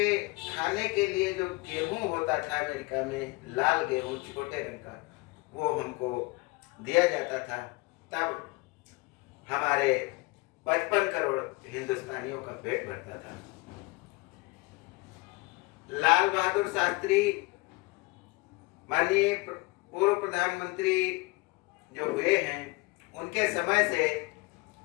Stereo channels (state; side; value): quieter; right; 24.6 dB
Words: खाने के लिए जो गेहूं होता था अमेरिका में, लाल गेहूं छोटे रंग का, वो हमको दिया जाता था। तब हमारे 55 करोड़ हिंदुस्तानियों का पेट भरता था। लाल बहादुर शास्त्री माननीय पूर्व प्रधानमंत्री जो हुए हैं, उनके समय से